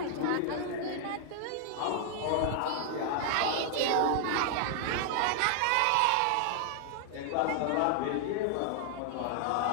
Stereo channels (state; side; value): different; both; correlation 0.00